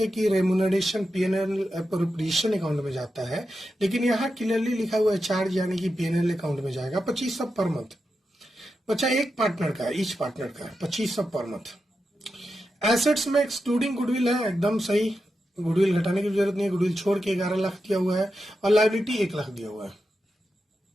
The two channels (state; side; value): normal; both; correlation 0.89